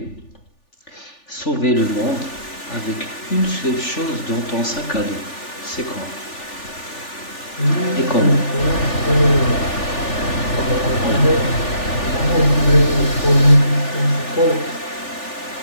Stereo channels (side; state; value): right; late; 3.4 ms